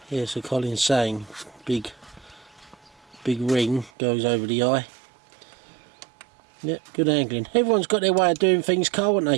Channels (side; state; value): left; drops out; at 3.9 s